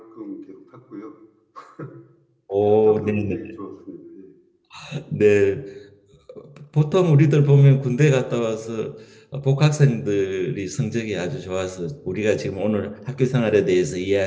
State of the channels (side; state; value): both; identical; correlation 1.00